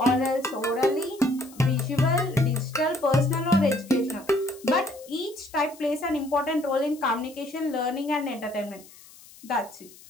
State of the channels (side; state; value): left; noise; hiss, 22 dB below the sound